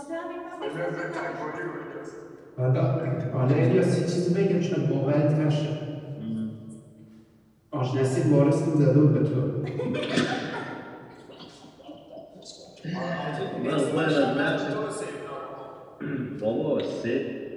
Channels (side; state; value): both; identical; correlation 1.00